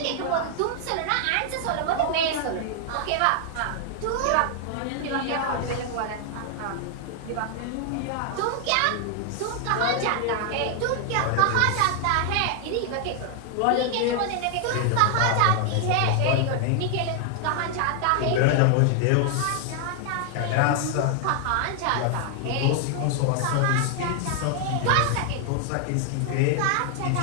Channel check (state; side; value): different; both; correlation 0.00